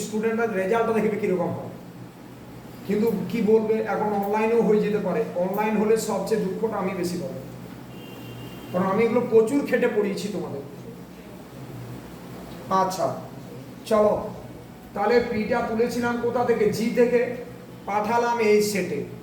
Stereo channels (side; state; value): both; identical; correlation 1.00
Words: স্টুডেন্টরা রেজাল্টটা দেখবে কীরকম হয়, কিন্তু কি বলবে, এখন অনলাইনেও হয়ে যেতে পারে। অনলাইন হলে সবচেয়ে দুঃখটা আমি বেশি পাবো, কারণ আমি এগুলো প্রচুর খেটে পড়িয়েছি তোমাদের। আচ্ছা চলো, তাহলে পিটা তুলেছিলাম কোথা থেকে, জি থেকে, পাঠালাম এই সেটে।